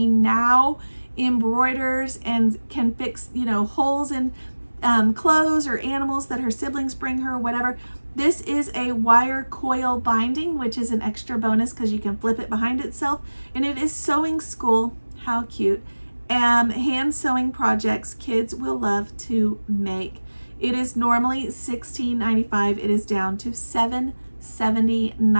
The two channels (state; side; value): inverted; both; correlation -1.00